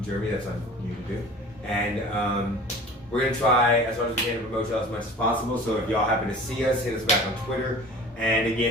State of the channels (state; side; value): normal; both; correlation 0.42